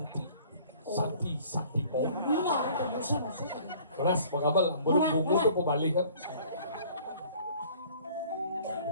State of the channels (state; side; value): inverted; both; correlation -0.52